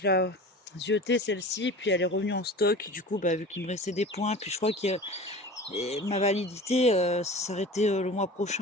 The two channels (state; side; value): normal; both; correlation 0.37